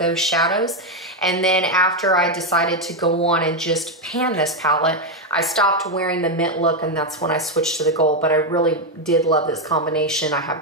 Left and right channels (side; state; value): both; normal; correlation 0.05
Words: shadows. And then after I decided to go on and just pan this palette, I stopped wearing the mint look, and that's when I switched to the gold. But I really did love this combination. I